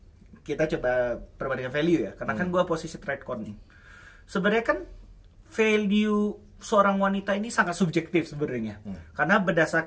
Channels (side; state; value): both; identical; correlation 1.00